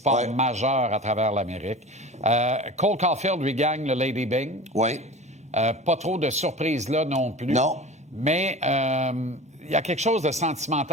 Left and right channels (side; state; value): both; normal; correlation 0.35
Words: majeurs à travers l'Amérique. Cole Caulfield lui gagne le Lady Byng. Oui. Pas trop de surprises là non plus. Non. Mais il y a quelque chose de